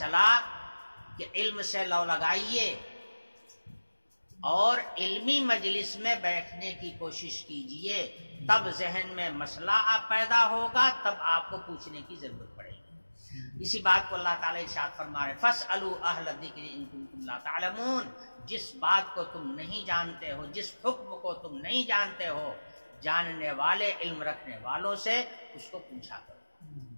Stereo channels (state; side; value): inverted; both; correlation -1.00